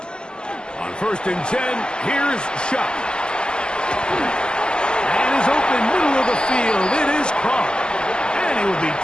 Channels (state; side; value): late; right; 0.047 ms